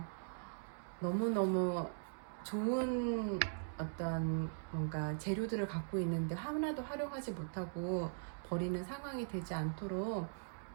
좋은 어떤 뭔가 재료들을 갖고 있는데 하나도 활용하지 못하고 버리는 상황이 되지 않도록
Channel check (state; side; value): silent; left; digital silence